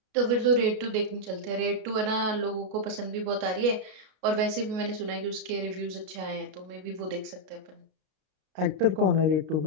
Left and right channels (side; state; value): left; late; 33 ms